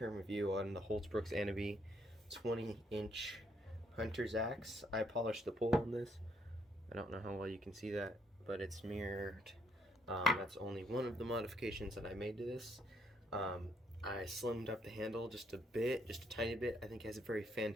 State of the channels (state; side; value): normal; both; correlation 0.71